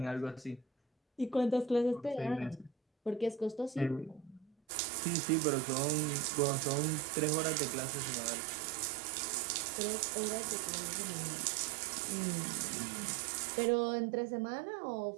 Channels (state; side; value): drops out; left; at 4.5 s